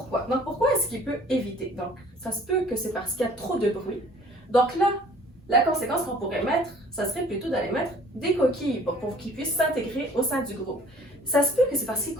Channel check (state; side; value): normal; both; correlation 0.53